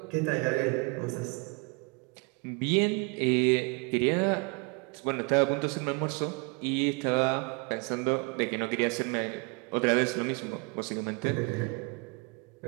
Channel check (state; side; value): quieter; left; 31.5 dB